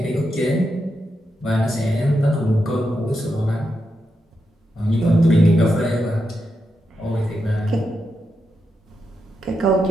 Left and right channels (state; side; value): normal; both; correlation 0.85